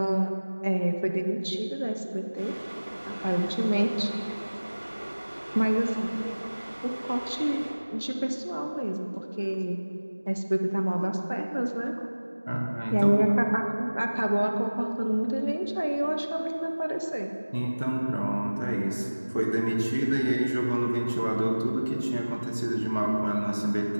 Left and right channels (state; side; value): inverted; both; correlation -1.00